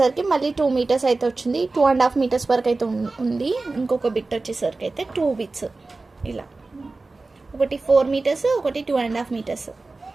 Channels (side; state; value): left; quieter; 3.5 dB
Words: మళ్ళీ 2 మీటర్స్ అయితే వచ్చింది. 2.5 మీటర్స్ వరకు అయితే ఉంది. ఇంకొక బిట్ వచ్చేసరికి అయితే 2 బిట్స్ ఇలా, ఒకటి 4 మీటర్స్, ఒకటి 2.5 మీటర్స్.